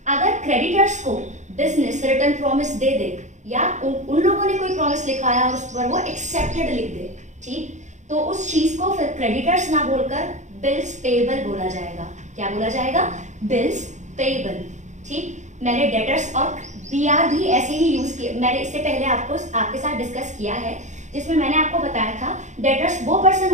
अगर क्रेडिटर्स को बिजनेस रिटर्न प्रॉमिस दे दे या उन लोगों ने कोई प्रॉमिस लिखाया और उस पर वो एक्सेप्टेड लिख दे, ठीक, तो उस चीज को फिर क्रेडिटर्स ना बोलकर बिल्स पेएबल बोला जाएगा। क्या बोला जाएगा? Bills payable. ठीक, मैंने डेटर्स और बीआर भी ऐसे ही यूज किया, मैंने इससे पहले आपके साथ डिस्कस किया है, जिसमें मैंने आपको बताया था डेटर्स वो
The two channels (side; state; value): left; late; 0.35 ms